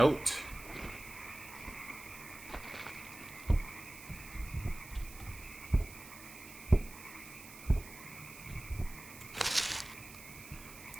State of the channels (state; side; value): noise; right; hiss, 15 dB below the sound